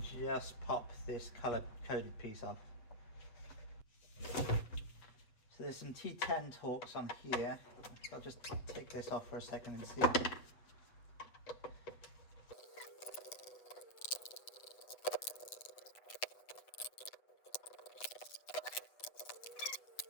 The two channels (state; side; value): late; right; 8.1 ms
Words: just pop this color coded piece off. So there's some T10 Torx on here. I'll just take this off for a second and see.